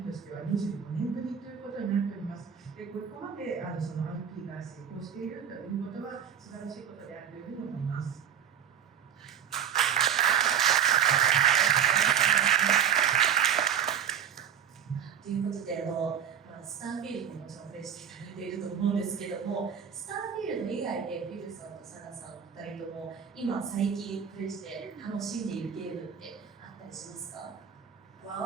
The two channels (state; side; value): quieter; left; 8.6 dB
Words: としては25年ぶりということになっております。で、ここまでその IP が成功しているということは素晴らしいことであるというふうに思います。ということで、スターフィールドももちろんプレイしていただいていると思うんですけども、スターフィールド以外でフィルさんとサナさんお二人とも今最近プレイして楽しんでいるゲームってあったりしますか？